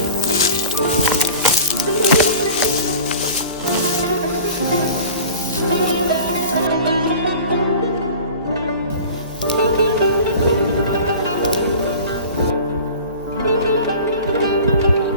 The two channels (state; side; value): inverted; both; correlation -0.40